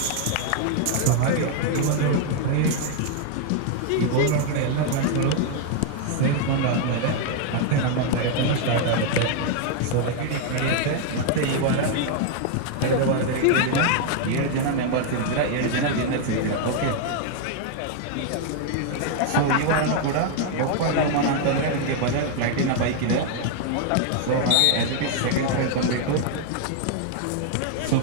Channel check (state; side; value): different; both; correlation 0.00